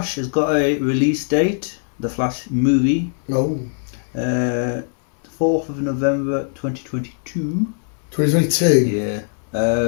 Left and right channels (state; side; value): silent; right; digital silence